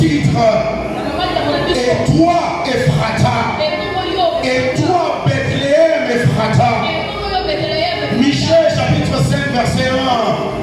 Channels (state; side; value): identical; both; correlation 1.00